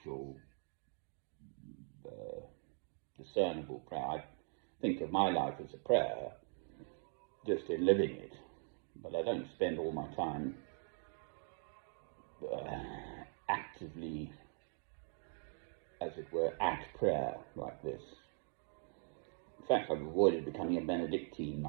discernible prayer. I think of my life as a prayer, just in living it, but I don't spend all my time actively, as it were, at prayer like this. In fact, I've avoided becoming a Benedictine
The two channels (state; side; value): silent; left; 50 dB below the other